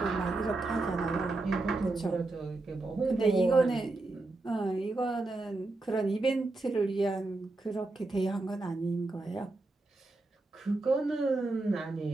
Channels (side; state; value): left; quieter; 3.1 dB